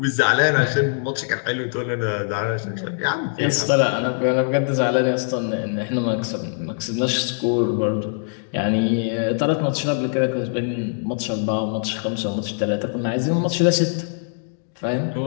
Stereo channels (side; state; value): right; silent; digital silence